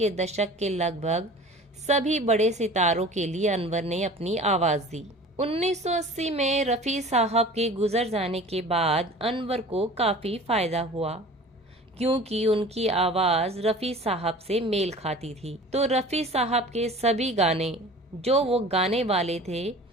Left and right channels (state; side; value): normal; both; correlation 0.42